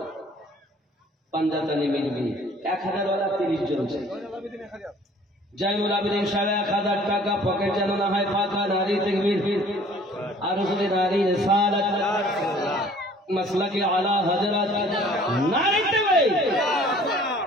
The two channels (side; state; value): both; normal; correlation 0.53